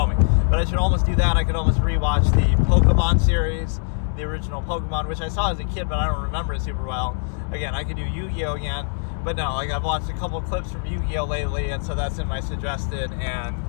But I should almost do that. I could almost rewatch the Pokemon series, the original Pokemon, which I saw as a kid, but I don't remember it super well. Again, I could do Yu-Gi-Oh! Again, but no, like I've watched a couple clips from Yu-Gi-Oh! Lately, and so that's in my suggested, and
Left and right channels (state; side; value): silent; right; digital silence